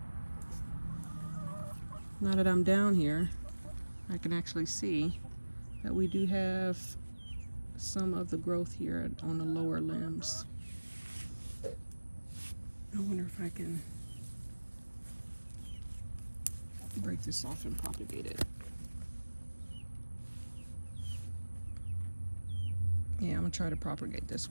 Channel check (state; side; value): inverted; both; correlation -1.00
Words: Now that I'm down here, I can actually see that we do have some of the growth here on the lower limbs. I wonder if I can break this off and propagate it. Yeah, I'm gonna try to propagate this